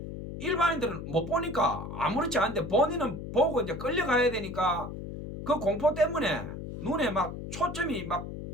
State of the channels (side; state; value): left; noise; hum, 8 dB below the sound